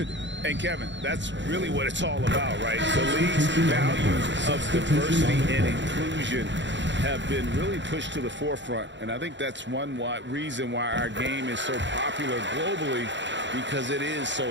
And Kevin, that's really what it's all about, right? The league's values of diversity and inclusion have been really pushed to the forefront. And I think that's one reason why our game is so popular globally, because it is so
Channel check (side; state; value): left; late; 0.53 ms